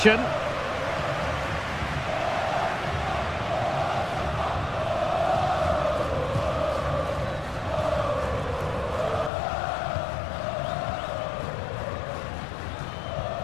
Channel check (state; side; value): drops out; right; at 9.3 s